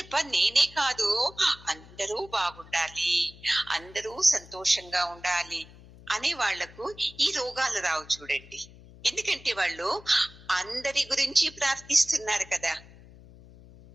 నేనే కాదు అందరూ బాగుండాలి, అందరూ సంతోషంగా ఉండాలి అనే వాళ్లకు ఈ రోగాలు రావు చూడండి. ఎందుకంటే వాళ్ళు అందరి గురించి ప్రార్థిస్తున్నారు కదా.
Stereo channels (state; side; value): noise; left; hum, 21 dB below the sound